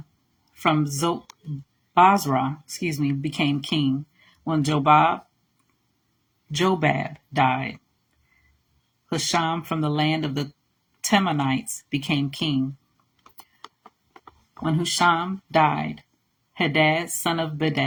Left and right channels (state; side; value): identical; both; correlation 1.00